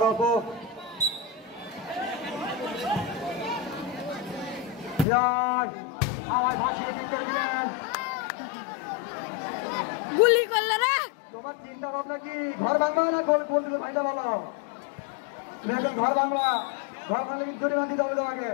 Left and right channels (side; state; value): right; drops out; at 5.1 s